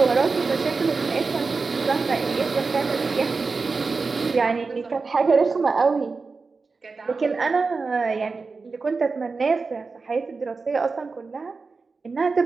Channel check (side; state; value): left; quieter; 4.3 dB